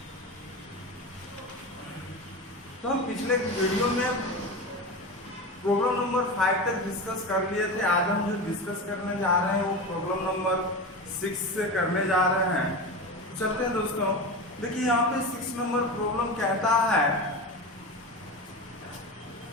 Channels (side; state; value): both; normal; correlation 0.25